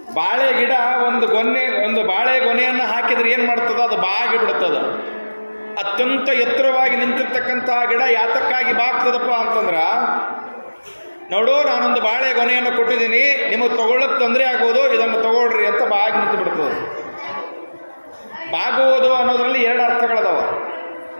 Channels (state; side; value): inverted; both; correlation -1.00